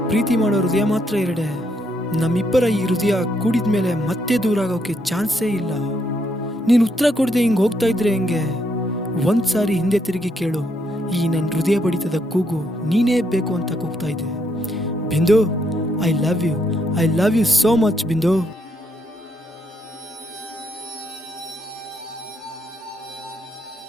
ಪ್ರೀತಿ ಮಾಡೋ ಹೃದಯ ಮಾತ್ರ ಎರಡೆ. ನಮ್ಮಿಬ್ಬರ ಈ ಹೃದಯ ಕೂಡಿದ್ಮೇಲೆ ಮತ್ತೆ ದೂರ ಆಗೋಕೆ ಚಾನ್ಸೇ ಇಲ್ಲ. ನೀನು ಉತ್ತರ ಕೊಡದೆ ಹಿಂಗೆ ಹೋಗ್ತಾ ಇದ್ರೆ ಹೆಂಗೆ? ಒಂದ್ಸಾರಿ ಹಿಂದೆ ತಿರುಗಿ ಕೇಳು, ಈ ನನ್ನ ಹೃದಯ ಬಡಿತದ ಕೂಗು ನೀನೇ ಬೇಕು ಅಂತ ಕೂಗ್ತಾ ಇದೆ. Bindu, I love you so much Bindu.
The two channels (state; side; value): normal; both; correlation 0.75